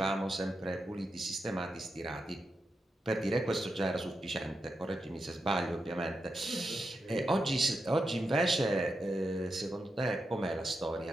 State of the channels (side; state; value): both; normal; correlation 0.87